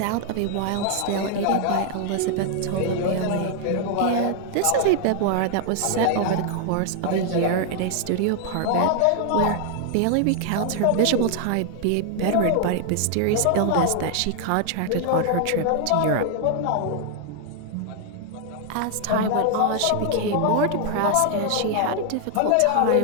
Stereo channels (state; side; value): different; both; correlation 0.00